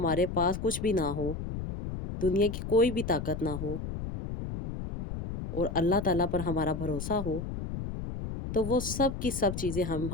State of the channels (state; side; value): noise; left; rumble, 6 dB below the sound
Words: पास कुछ भी ना हो, दुनिया की कोई भी ताकत ना हो और अल्लाह ताला पर हमारा भरोसा हो, तो वो सब की सब चीज़ें हम